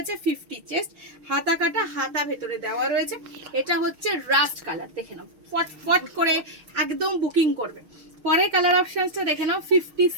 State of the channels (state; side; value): late; left; 6.5 ms